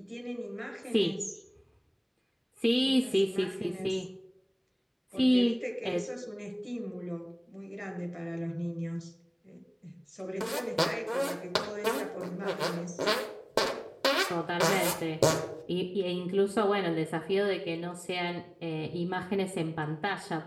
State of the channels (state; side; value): identical; both; correlation 1.00